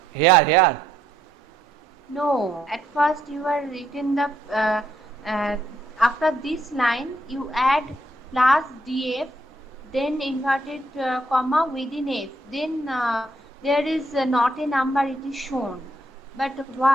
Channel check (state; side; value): normal; both; correlation 0.73